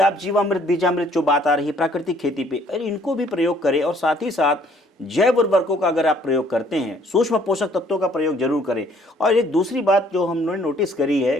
जीवामृत, बीजामृत जो बात आ रही है प्राकृतिक खेती पे, अरे इनको भी प्रयोग करें। और साथ ही साथ जैव उर्वरकों का अगर आप प्रयोग करते हैं, सूक्ष्म पोषक तत्वों का प्रयोग जरूर करें। और एक दूसरी बात जो हमने नोटिस करी है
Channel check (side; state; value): both; normal; correlation 0.61